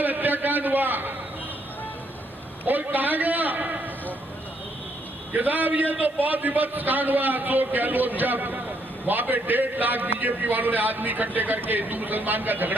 हत्याकांड हुआ और कहा गया कि साहब ये तो बहुत विभत्स कांड हुआ। अशोक गहलोत जब वहां पे 1.5 लाख बीजेपी वालों ने आदमी इकट्ठे करके हिंदू मुसलमान का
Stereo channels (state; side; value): normal; both; correlation 0.72